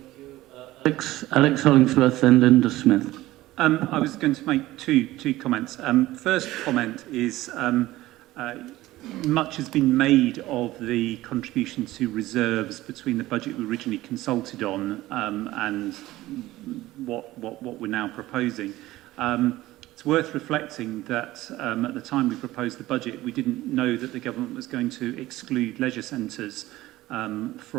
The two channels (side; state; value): left; quieter; 16.8 dB